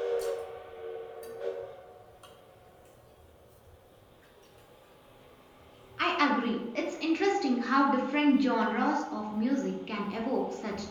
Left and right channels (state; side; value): identical; both; correlation 1.00